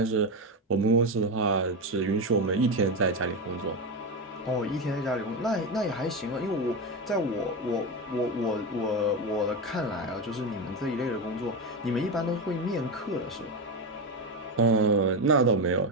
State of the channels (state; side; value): normal; both; correlation 0.14